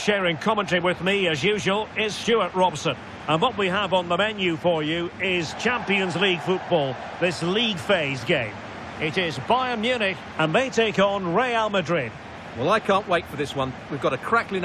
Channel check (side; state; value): both; identical; correlation 1.00